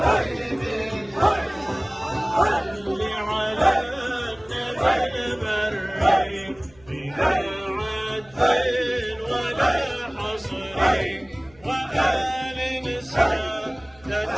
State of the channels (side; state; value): left; noise; hum, 27 dB below the sound